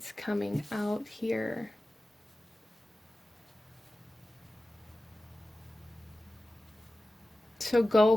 coming out here. So go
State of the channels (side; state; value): both; normal; correlation 0.95